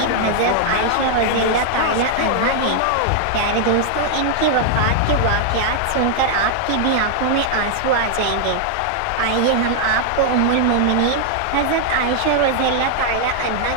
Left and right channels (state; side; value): different; both; correlation 0.00